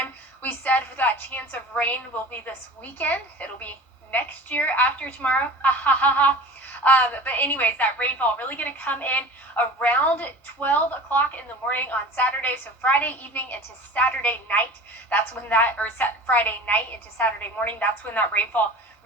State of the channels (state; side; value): normal; both; correlation 0.38